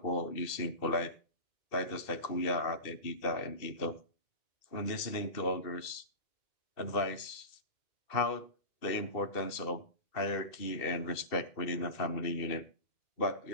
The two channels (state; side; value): late; right; 2.6 ms